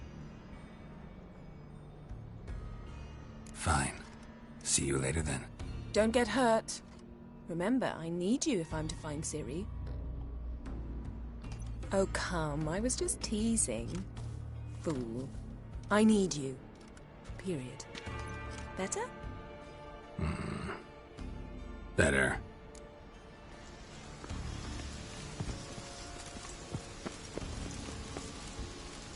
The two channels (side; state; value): both; identical; correlation 1.00